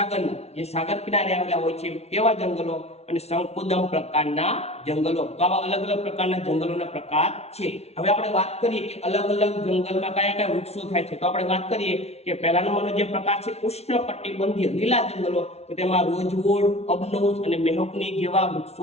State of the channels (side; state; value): right; late; 0.31 ms